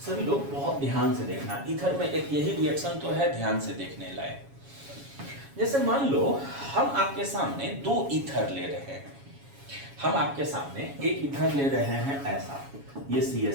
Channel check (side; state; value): left; late; 7.2 ms